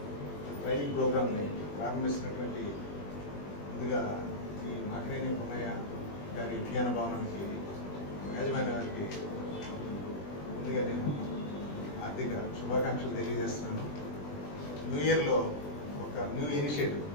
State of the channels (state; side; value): late; right; 20 ms